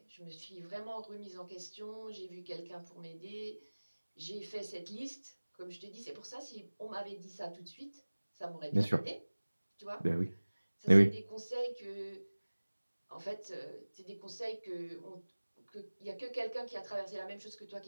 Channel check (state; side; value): inverted; both; correlation -1.00